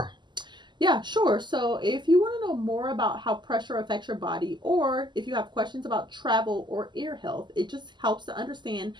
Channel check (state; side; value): late; left; 0.22 ms